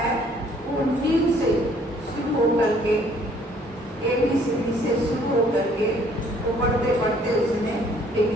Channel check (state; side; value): normal; both; correlation 0.61